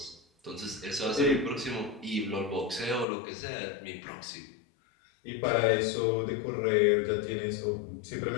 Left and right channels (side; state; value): right; drops out; at 3.1 s